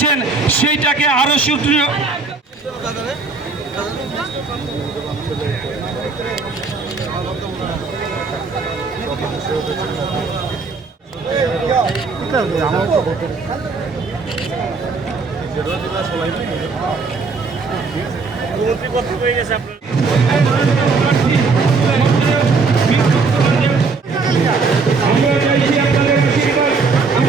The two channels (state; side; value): quieter; left; 4.3 dB